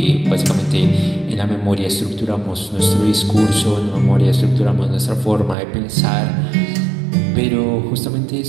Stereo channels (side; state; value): left; drops out; at 5.6 s